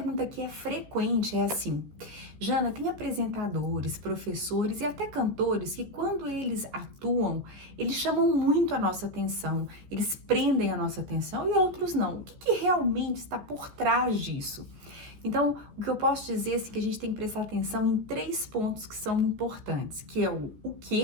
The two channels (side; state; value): left; late; 14 ms